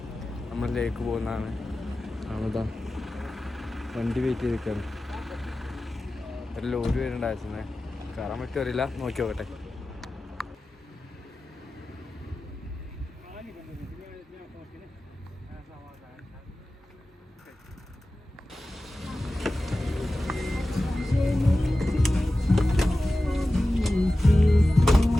നമ്മൾ ലേക്ക് പോകുന്നതാണ്. അതാ വണ്ടി വെയിറ്റ് ചെയ്ത് നിൽക്കുകയാണ്. ഒരു ലോറി വരുന്നുണ്ടായിരുന്നേ, കയറാൻ പറ്റുമോ അറിയില്ല, നോക്കി നോക്കട്ടെ.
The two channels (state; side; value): normal; both; correlation 0.95